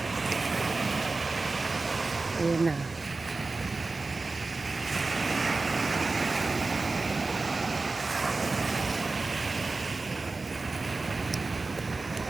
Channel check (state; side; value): quieter; left; 3.7 dB